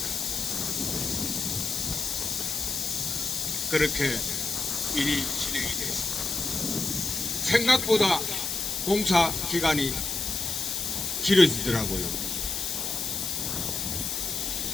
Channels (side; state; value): left; noise; hiss, 2 dB below the sound